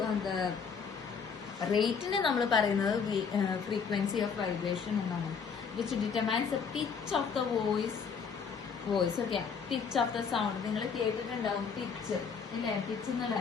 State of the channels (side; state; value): right; quieter; 6.1 dB